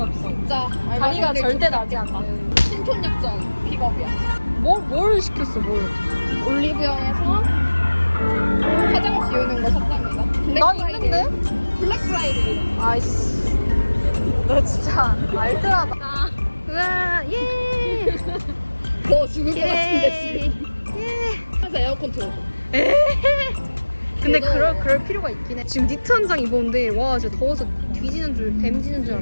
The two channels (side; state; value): both; inverted; correlation -1.00